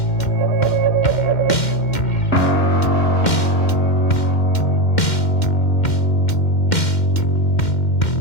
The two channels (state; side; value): late; right; 2.1 ms